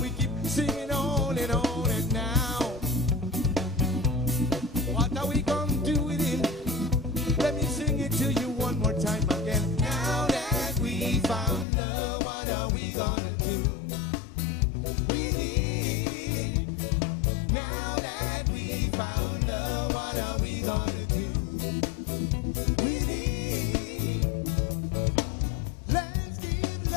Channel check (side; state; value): right; drops out; at 11.7 s